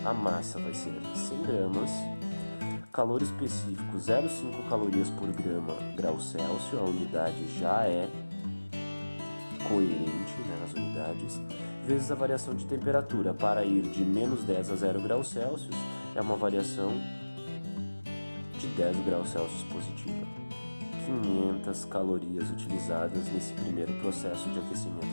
a massa vai ser 100 gramas, calor específico 0,5 calorias por grau Celsius, a unidade já é coerente, né, nas unidades, vezes a variação de temperatura. Para ir de menos 10 a 0 graus Celsius, é uma variação de 10 graus Celsius positiva. 500 calorias utilizadas nesse primeiro processo de aquecimento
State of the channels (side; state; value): both; inverted; correlation -1.00